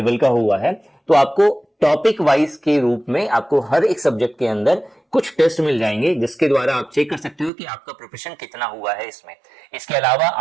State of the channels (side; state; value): left; drops out; at 7.5 s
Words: का हुआ है, तो आपको टॉपिक वाइज के रूप में आपको हर एक सब्जेक्ट के अंदर कुछ टेस्ट मिल जाएंगे, जिसके द्वारा आप चेक कर सकते हो कि आपका प्रिपरेशन कितना हुआ है इसमें। इसके अलावा